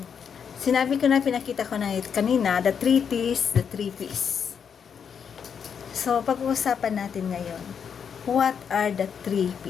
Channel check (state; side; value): quieter; right; 7.2 dB